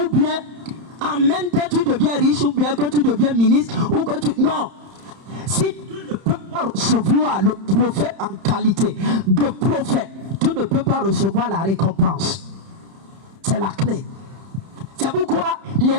bien en même temps tu deviens riche, ou bien que tu deviens ministre, ou que tu... Non. Si tu ne peux pas recevoir le prophète en qualité de prophète, tu ne peux pas recevoir la récompense. C'est la clé. C'est pourquoi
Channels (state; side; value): late; left; 31 ms